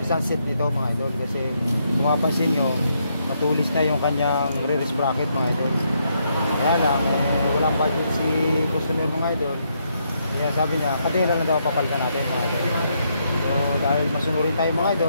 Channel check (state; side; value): inverted; both; correlation -0.77